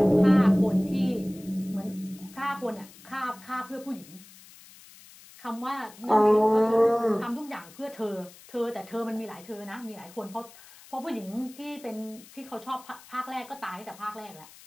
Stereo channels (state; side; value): noise; left; hiss, 21 dB below the sound